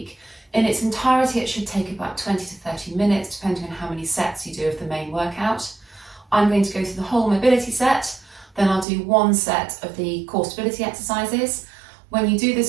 In its entirety, it should take about 20 to 30 minutes, depending on how many sets you do of the main workout. I'm going to go through the whole mobility set, then I'll do one set of the core stability exercises. When you do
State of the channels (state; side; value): drops out; left; at 8.8 s